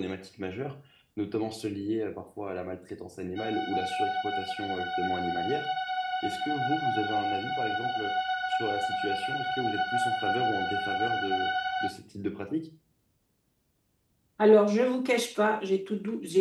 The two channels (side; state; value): both; identical; correlation 1.00